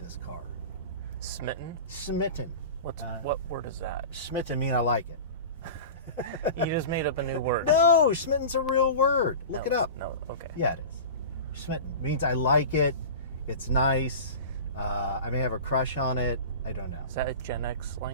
car. Smitten? Smitten. What word is that? Smitten mean I like it. You just made up a new word. No, smitten's a real word. Look it up. No, okay. Yeah, it is. Smitten means I like it. It's nice. I may have a crush on it. I don't know. Is that a Gen X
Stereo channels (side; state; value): both; inverted; correlation -0.32